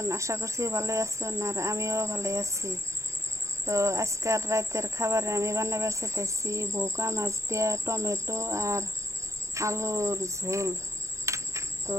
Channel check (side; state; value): left; late; 0.15 ms